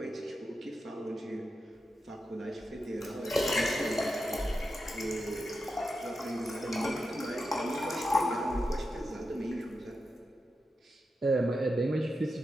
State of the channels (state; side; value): normal; both; correlation 0.89